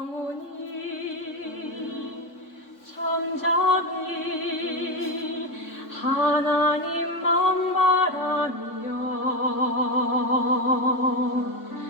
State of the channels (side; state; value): right; late; 3.6 ms